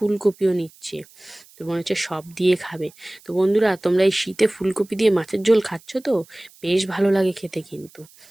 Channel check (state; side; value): noise; right; hiss, 26 dB below the sound